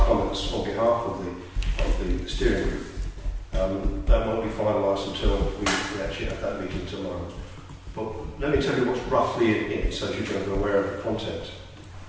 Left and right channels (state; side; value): identical; both; correlation 1.00